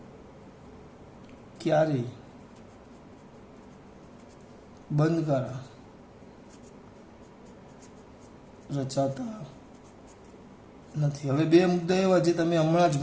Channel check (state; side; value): identical; both; correlation 1.00